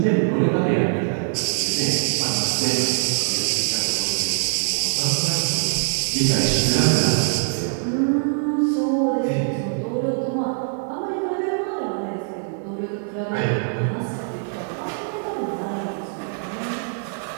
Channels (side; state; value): left; silent; digital silence